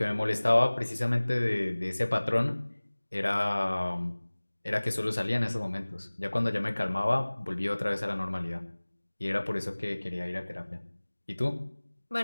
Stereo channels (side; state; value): both; inverted; correlation -1.00